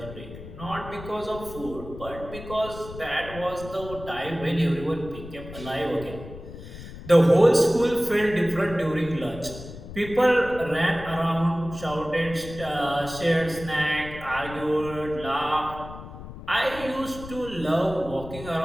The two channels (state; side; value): noise; left; rumble, 13 dB below the sound